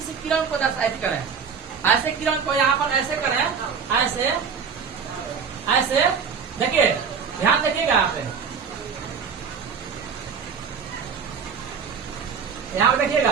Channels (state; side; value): quieter; left; 6.3 dB